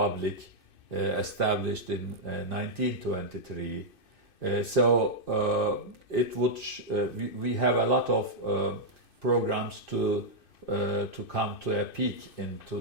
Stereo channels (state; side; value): late; right; 2.6 ms